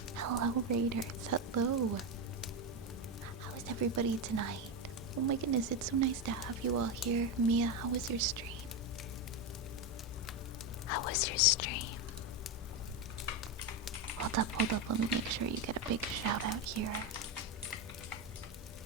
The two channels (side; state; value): both; normal; correlation 0.11